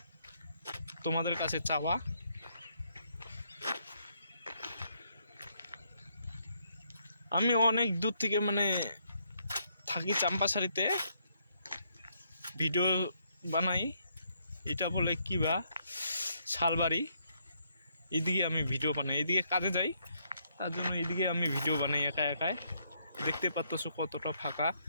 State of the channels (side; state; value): both; inverted; correlation -0.73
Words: তোমাদের কাছে চাওয়া। আমি অনেক দূর থেকে থাকি চাম্পাসারিতে, ভিডিও বানাই। এটা বলে কি বা শালবাড়ি, এদিকে আমি ভিডিও বানাই, এদিকে কাজে যাই, তার জন্য এদিকে আমি ভিডিও বানাই একা একাই। দেখতে পাচ্ছ কতটা ফাঁকা